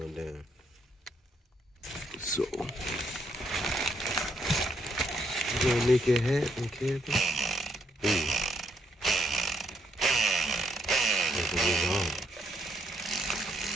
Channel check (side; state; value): both; normal; correlation 0.74